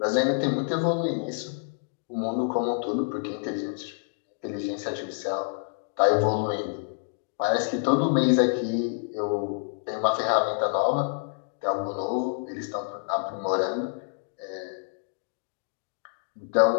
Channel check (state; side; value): silent; right; digital silence